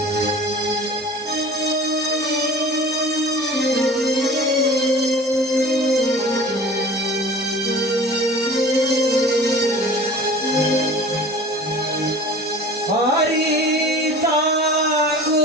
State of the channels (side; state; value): both; normal; correlation 0.42